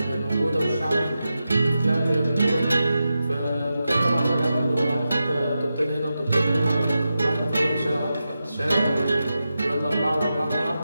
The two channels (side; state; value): both; inverted; correlation -0.91